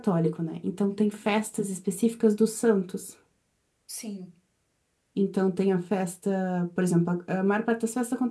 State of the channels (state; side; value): identical; both; correlation 1.00